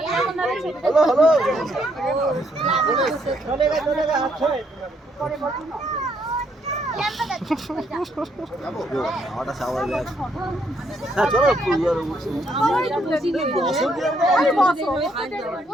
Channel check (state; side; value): normal; both; correlation 0.72